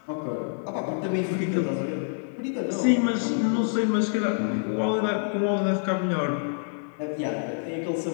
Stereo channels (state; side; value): silent; right; digital silence